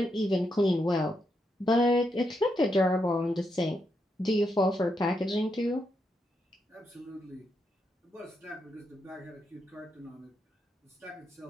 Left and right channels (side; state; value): both; normal; correlation 0.82